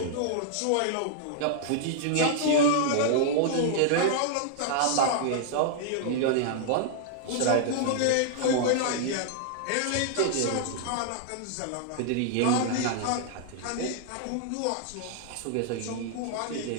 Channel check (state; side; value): different; both; correlation -0.01